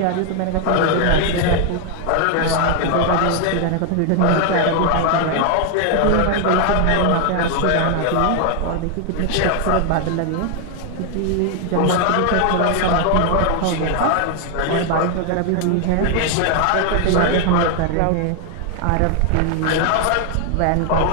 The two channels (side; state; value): both; different; correlation 0.00